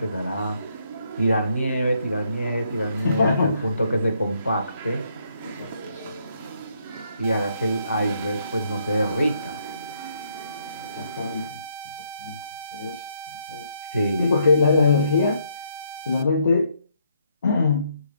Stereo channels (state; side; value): inverted; both; correlation -0.72